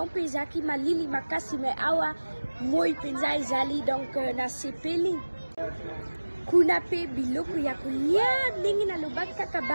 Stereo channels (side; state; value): both; inverted; correlation -1.00